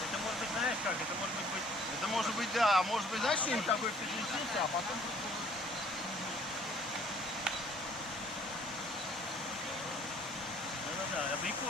Это может быть, знаешь как? Это может быть... Это может быть, да, может быть, знаешь, что-нибудь такое переключиться, а потом... Да-да-да,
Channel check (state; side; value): normal; both; correlation 0.57